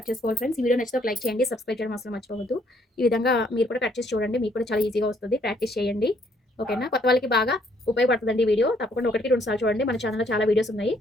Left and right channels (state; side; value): normal; both; correlation 0.67